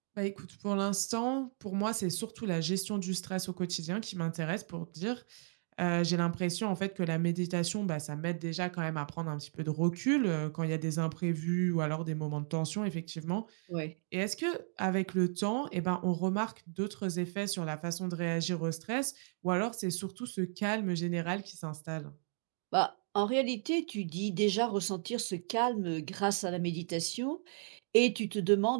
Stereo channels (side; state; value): left; silent; 55 dB below the other